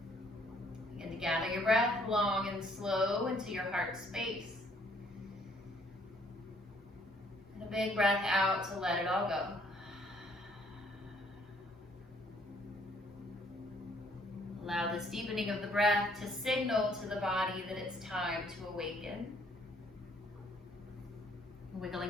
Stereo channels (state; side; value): normal; both; correlation 0.64